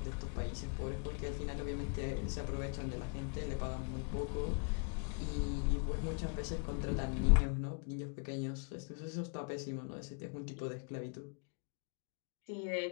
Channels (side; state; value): right; quieter; 37.1 dB